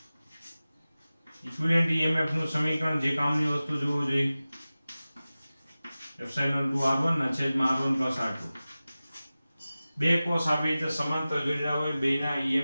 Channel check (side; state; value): both; inverted; correlation -0.97